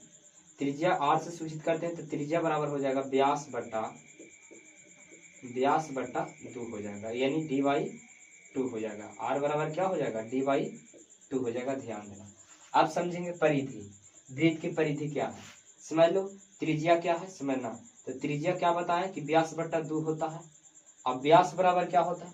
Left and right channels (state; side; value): identical; both; correlation 1.00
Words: त्रिज्या r से सूचित करते हैं तो त्रिज्या बराबर हो जाएगा व्यास बट्टा 2 हो जाएगा, यानी डी/2 हो जाएगा। r बराबर क्या हो जाएगा, डी/2 हो जाएगा। ध्यान देना। अब समझेंगे परिधि। वृत्त की परिधि क्या है समझ लो। त्रिज्या क्या है समझना, तो त्रिज्या क्या बताएं कि व्यास बट्टा 2 होता है। अब व्यास बराबर क्या होता है,